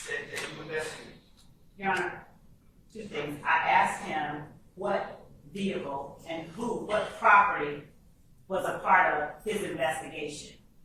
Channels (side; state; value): both; identical; correlation 1.00